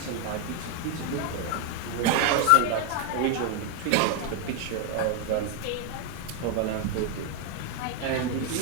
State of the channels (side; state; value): both; different; correlation 0.01